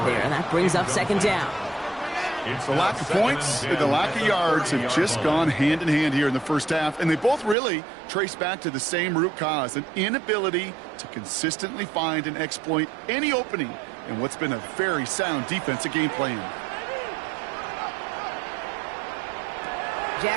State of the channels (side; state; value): left; drops out; at 7.6 s